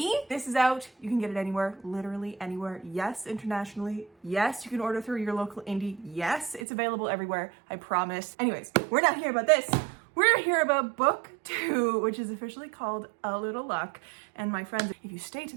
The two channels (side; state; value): left; drops out; at 6.6 s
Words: This is out. You can get it anywhere, literally anywhere. Yes, internationally. Yes, you can order through your local indie. Yes, it's available everywhere, I promise. Anyways, we're not here about this. We're here about book 2, which is officially called A Little Luck. And my friends, if you stay to